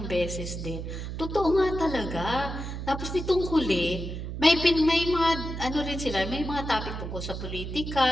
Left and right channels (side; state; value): right; noise; hum, 6 dB below the sound